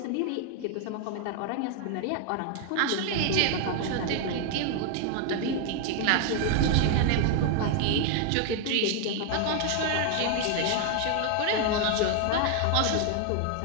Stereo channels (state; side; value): different; both; correlation 0.00